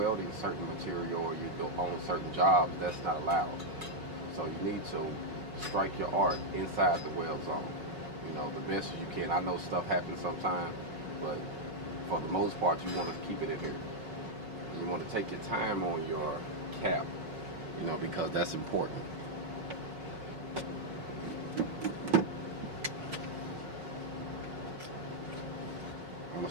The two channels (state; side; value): late; left; 4.9 ms